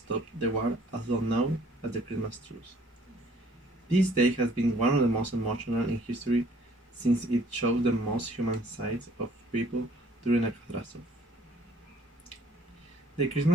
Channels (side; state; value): both; normal; correlation 0.58